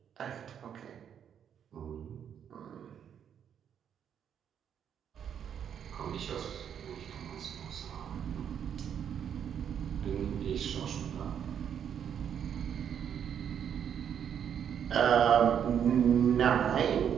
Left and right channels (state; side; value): quieter; left; 8.6 dB